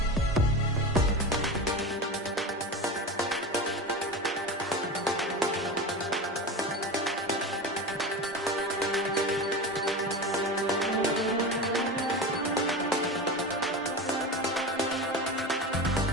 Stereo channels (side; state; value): both; normal; correlation 0.26